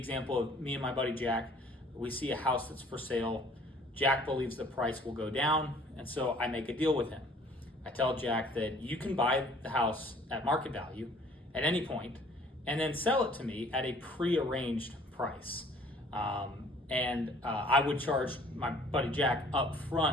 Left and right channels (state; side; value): normal; both; correlation 0.55